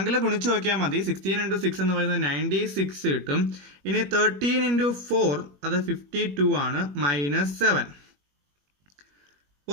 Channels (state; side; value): late; left; 21 ms